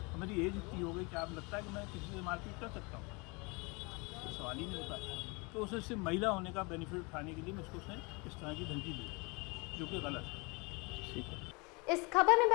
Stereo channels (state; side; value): quieter; right; 28.6 dB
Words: तो मेरी एज इतनी हो गई कि आप लगता है कि मैं किसी से मारपीट कर सकता हूँ, तो सवाल ही नहीं होता। तो उसे सिर्फ महिला होने का बेनिफिट उठाने के लिए मुझको उसने इस तरह की धमकी दी, जो कि गलत है। ठीक है। इस खबर में